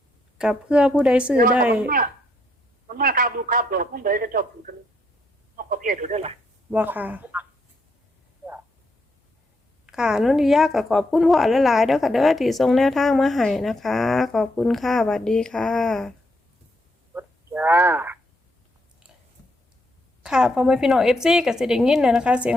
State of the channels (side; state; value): both; normal; correlation 0.76